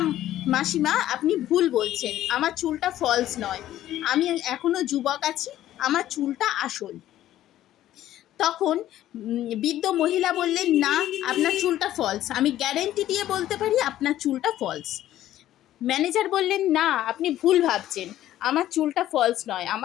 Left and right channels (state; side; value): quieter; right; 13.2 dB